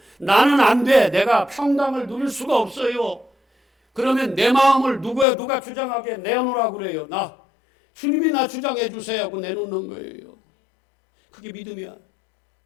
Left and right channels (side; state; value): right; drops out; at 5.2 s